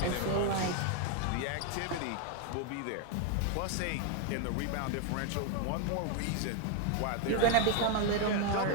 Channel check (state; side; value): different; both; correlation 0.01